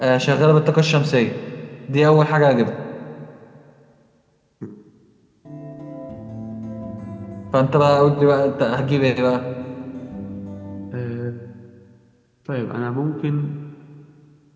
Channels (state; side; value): identical; both; correlation 1.00